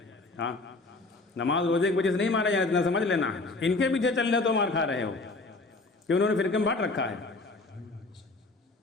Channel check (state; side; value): quieter; right; 3.3 dB